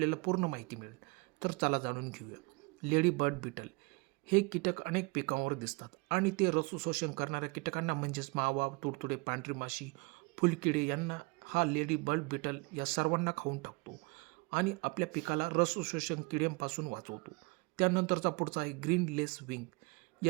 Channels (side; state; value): left; quieter; 27.7 dB